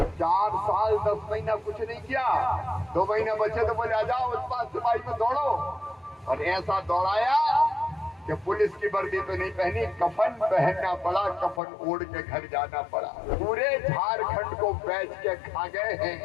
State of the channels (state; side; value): drops out; right; at 11.6 s